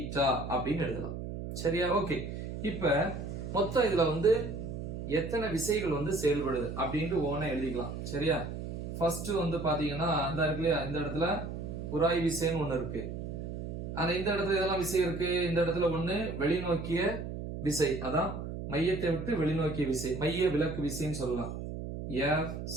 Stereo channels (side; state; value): right; noise; hum, 6 dB below the sound